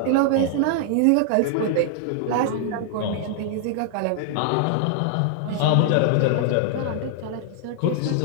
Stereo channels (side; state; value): both; different; correlation -0.01